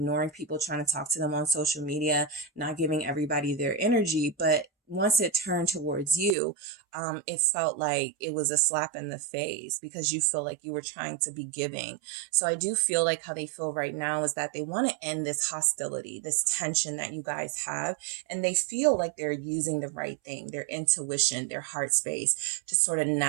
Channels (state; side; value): drops out; left; at 6.4 s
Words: people trying to talk to them on social media, not giving everybody their energy. But once it turned towards you, it felt like it was a slap in the face, because you feel like you were trying to be giving. So I do feel like how they feel right now is that they want to end this hostility, this tension that you guys have. And they feel like they're using the right thing, their intuition, their heart space, to sort of